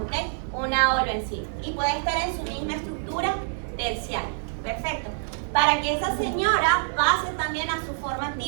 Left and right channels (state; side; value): silent; left; 59 dB below the other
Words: Una holoenzima. Y puede estar en su misma estructura terciaria. Perfecto. Para que esa señora pase también a su forma